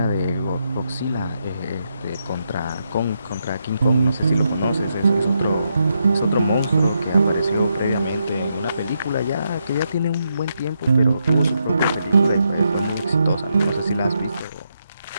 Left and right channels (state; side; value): inverted; both; correlation -0.82